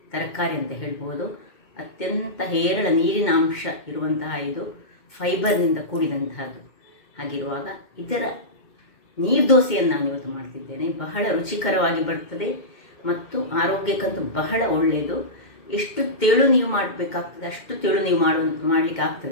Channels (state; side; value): late; right; 2.1 ms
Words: ತರಕಾರಿ ಅಂತ ಹೇಳ್ಬೋದು. ಅತ್ಯಂತ ಹೇರಳ ನೀರಿನ ಅಂಶ ಇರುವಂತಹ ಇದು ಫೈಬರ್ನಿಂದ ಕೂಡಿದಂತಹದ್ದು. ಹಾಗಿರುವಾಗ ಇದರ ನೀರ್ದೋಸೆಯನ್ನು ನಾನು ಇವತ್ತು ಮಾಡ್ತಿದ್ದೇನೆ. ಬಹಳ ರುಚಿಕರವಾಗಿ ಬರ್ತದೆ ಮತ್ತು ಆರೋಗ್ಯಕ್ಕಂತೂ ಬಹಳ ಒಳ್ಳೆಯದು. ಎಷ್ಟು ತೆಳು ನೀವು ಮಾಡಬೇಕಾಗ್ತದೆ ಅಷ್ಟು ತೆಳು ನೀವು ಮಾಡಲಿಕ್ಕೆ